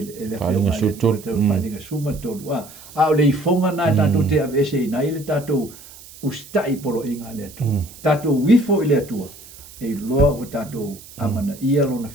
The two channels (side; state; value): right; noise; hiss, 19 dB below the sound